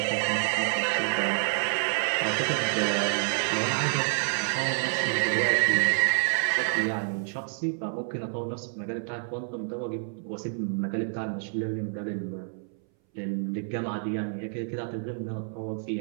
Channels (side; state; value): left; silent; 59 dB below the other